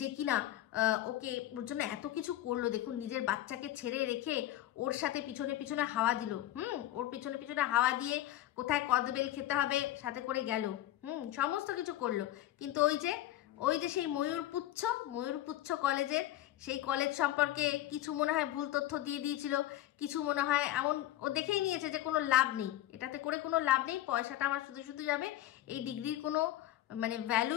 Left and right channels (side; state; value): right; quieter; 14.0 dB